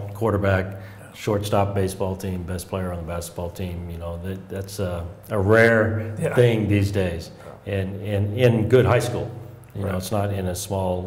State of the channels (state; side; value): identical; both; correlation 1.00